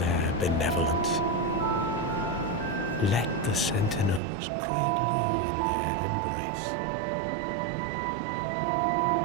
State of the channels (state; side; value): drops out; left; at 4.2 s